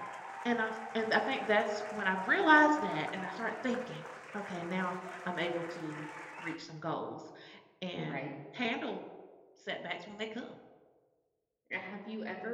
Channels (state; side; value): identical; both; correlation 1.00